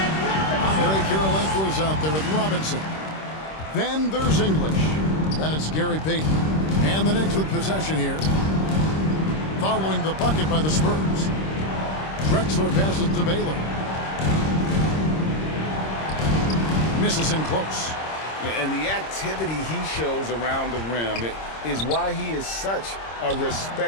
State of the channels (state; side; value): late; right; 26 ms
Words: Andre Kirilenko is out there with Robinson. Then there's English. Then it's Gary Payton. And the Knicks with possession here. Following the bucket by the Spurs. Drexler passes to Baylor. Misses in close. And the activity he shows around the rim is why he is such a